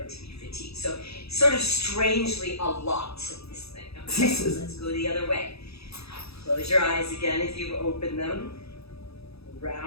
to be fatigued. So sort of strangely a lot of this thing. Okay, so let's go the other way. Close your eyes again if you've opened them.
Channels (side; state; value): right; late; 0.78 ms